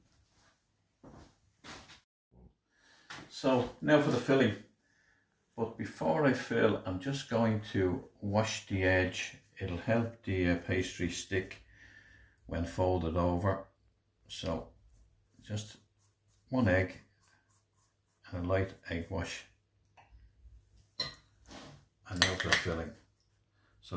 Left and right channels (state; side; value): identical; both; correlation 1.00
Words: So now for the filling. But before I fill, I'm just going to wash the edge. It'll help the pastry stick when folded over. So just 1 egg and a light egg wash. And now for the filling.